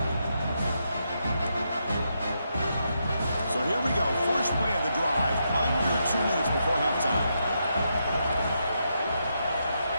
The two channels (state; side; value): inverted; both; correlation -0.82